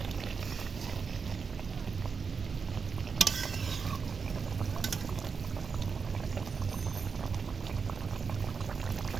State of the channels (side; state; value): left; quieter; 5.5 dB